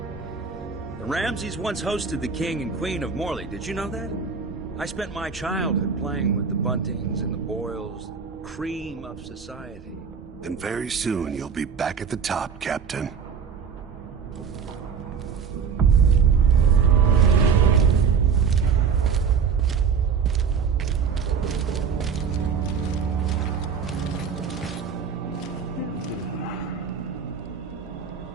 The Ramseys once hosted the King and Queen of Morley. Did you know that? I spent my childhood playing with the Buntings and the Boyles, the cream of society. And very soon you'll be back at the top, Captain.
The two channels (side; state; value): left; quieter; 6.3 dB